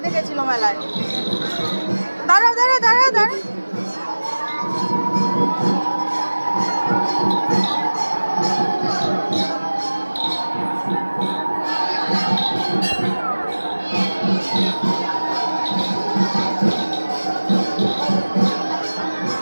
দেখেছিল মেলায়। দাঁড়াও দাঁড়াও দাঁড়াও দাঁড়াও,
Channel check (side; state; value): both; inverted; correlation -1.00